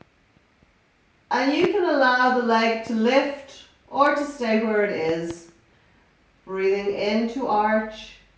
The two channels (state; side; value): identical; both; correlation 1.00